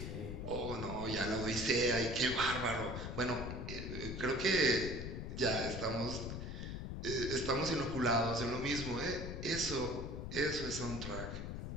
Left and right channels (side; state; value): left; noise; rumble, 6 dB below the sound